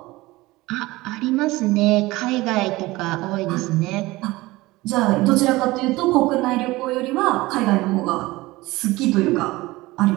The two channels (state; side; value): quieter; left; 20.0 dB